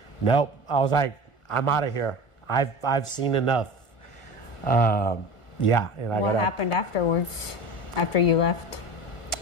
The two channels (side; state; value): right; late; 1.4 ms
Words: Nope. I was like, I'm out of here. I've seen enough. Yeah. And I what happened afterwards? After you left?